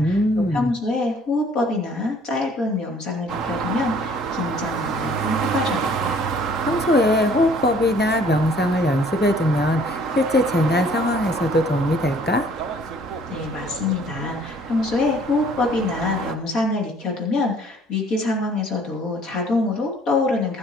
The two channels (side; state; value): both; normal; correlation 0.57